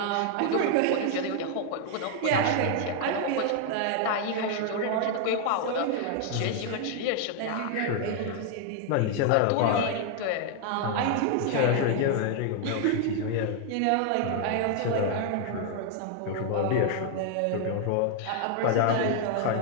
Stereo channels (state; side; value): different; both; correlation 0.00